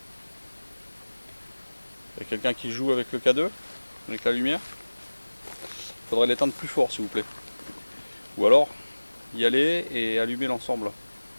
Il y a quelqu'un qui joue avec le K2? Avec la lumière? Il faudrait l'éteindre plus fort s'il vous plaît. Ou alors y aller et allumer l'ensemble.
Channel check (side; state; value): both; inverted; correlation -1.00